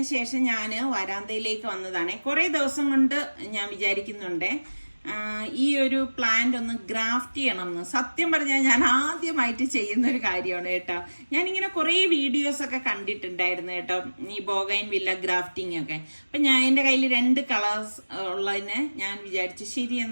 ശേഷം ഞാൻ വരാന്തയിലേക്ക് വന്നതാണ്. കുറേ ദിവസം കൊണ്ട് ഞാൻ വിചാരിക്കുന്നുണ്ട് ഈ ഒരു പ്ലാന്റ് ഒന്ന് ഗ്രാഫ്റ്റ് ചെയ്യണം എന്ന്. സത്യം പറഞ്ഞാൽ ഞാൻ ആദ്യമായിട്ട് ചെയ്യുന്ന ഒരു കാര്യമാണ് കേട്ടോ. ഞാനിങ്ങനെ കുറേ വീഡിയോസ് ഒക്കെ കണ്ടിട്ടുണ്ടായിരുന്നു കേട്ടോ, ഈ ബോഗൈൻ വില്ല ഗ്രാഫ്റ്റിംഗ് ഒക്കെ. അപ്പം ഞാൻ എൻ്റെ കയ്യിൽ 2 കളേഴ്സ് ഉള്ളതിനെ ഞാൻ വിചാരിച്ചു ശരി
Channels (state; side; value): inverted; both; correlation -1.00